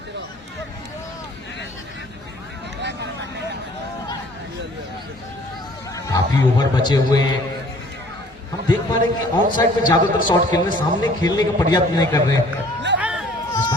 काफी ओवर बचे हुए हैं। हम देख पा रहे हैं कि ऑन साइड में ज्यादातर शॉट खेलने, सामने खेलने का प्रयास नहीं कर रहे हैं। इस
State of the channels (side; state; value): both; normal; correlation 0.54